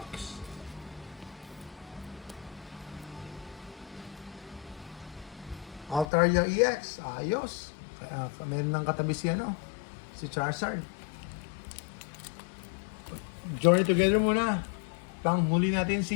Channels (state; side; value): drops out; right; at 6.1 s